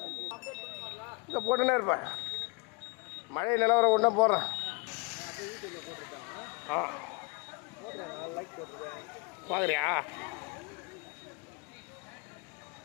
இங்க போட்டுனே இருப்பேன் மழை நிலவரம் ஒன்றா போடுறேன் பார்க்குறியா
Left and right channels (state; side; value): quieter; right; 30.4 dB